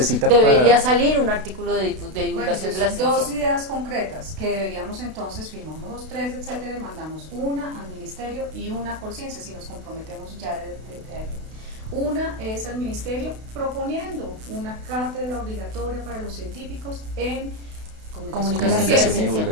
debería salir un artículo de divulgación de la ciencia. Dos ideas concretas que deberíamos entonces, firmamos los 3, etcétera, y mandamos una al ministerio y una a Conciencia, si nos comprometemos ya desde ahí. Una es al ministerio proponiendo una cátedra obligatoria para los científicos en comunicación de la ciencia. Y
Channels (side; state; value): left; late; 32 ms